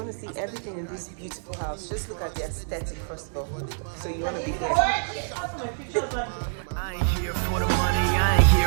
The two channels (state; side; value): silent; left; 61 dB below the other